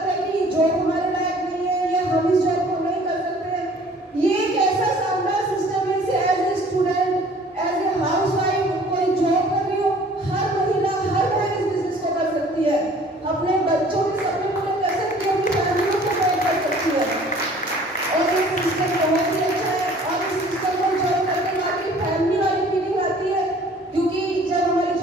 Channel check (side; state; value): both; normal; correlation 0.52